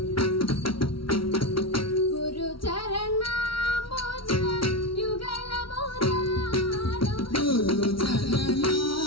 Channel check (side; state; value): right; late; 0.74 ms